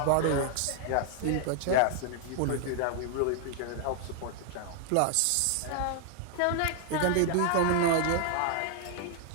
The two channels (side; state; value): both; different; correlation 0.00